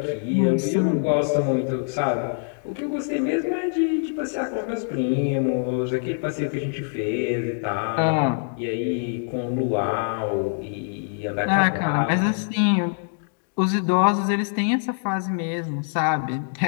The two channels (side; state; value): right; silent; digital silence